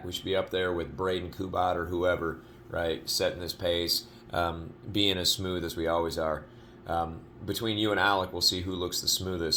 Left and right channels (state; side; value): identical; both; correlation 1.00